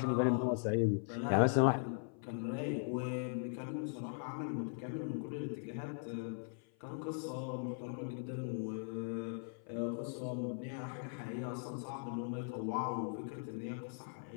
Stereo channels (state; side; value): silent; right; 51 dB below the other